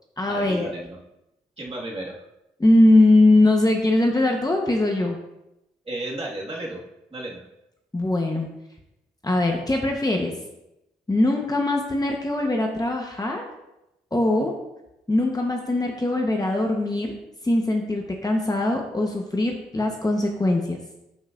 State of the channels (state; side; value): normal; both; correlation 0.89